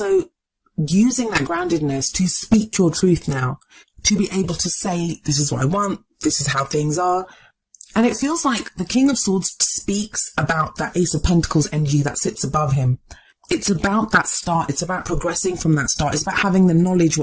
using that groundedness to speak your truth now, to be able to say, this is what I want, this is how things are. And it feels like the King of Swords speaks about that Ace of Pentacles energy that sits above him. It's about that start. It's about progressing from that start. It's about having the knowledge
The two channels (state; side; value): identical; both; correlation 1.00